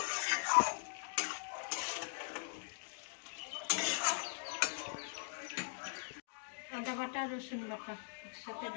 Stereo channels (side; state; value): right; silent; digital silence